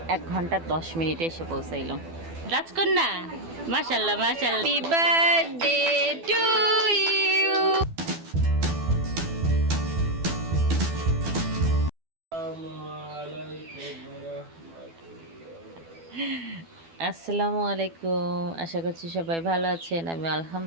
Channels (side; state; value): left; late; 12 ms